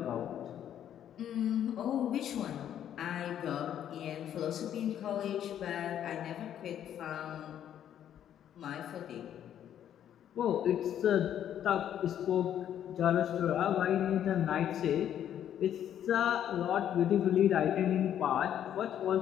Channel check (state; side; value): quieter; right; 10.2 dB